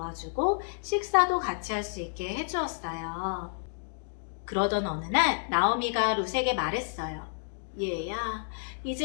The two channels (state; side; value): silent; right; digital silence